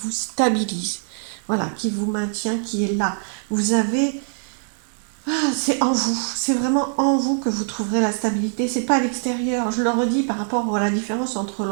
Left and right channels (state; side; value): silent; left; 64 dB below the other